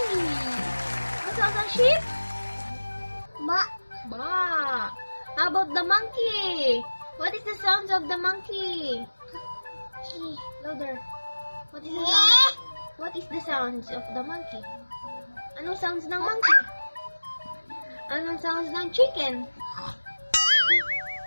What sounds ng sheep? Ba. Ba. How about the monkey? What is the sounds of the monkey? Chi. Louder. What is the sound? What is the sounds of the monkey? Anong sounds ng monkey? Anong sounds ng chicken?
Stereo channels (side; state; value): both; inverted; correlation -1.00